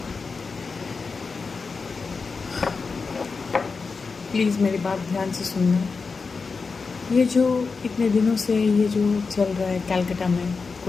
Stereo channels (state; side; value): quieter; right; 4.6 dB